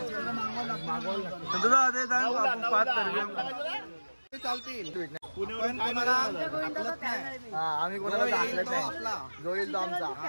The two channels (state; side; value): inverted; both; correlation -1.00